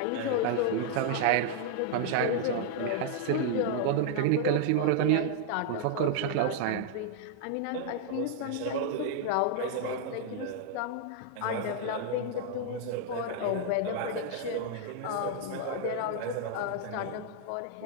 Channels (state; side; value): different; both; correlation -0.01